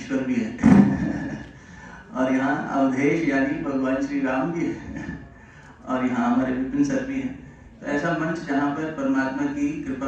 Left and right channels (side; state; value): both; identical; correlation 1.00